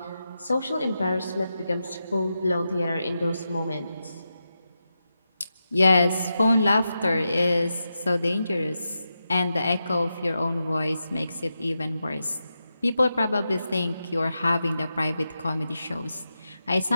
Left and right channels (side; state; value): both; inverted; correlation -0.89